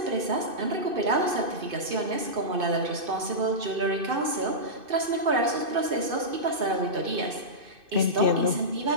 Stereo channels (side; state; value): left; late; 2.6 ms